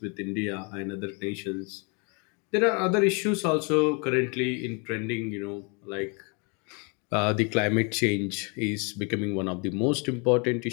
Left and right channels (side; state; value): right; quieter; 33.4 dB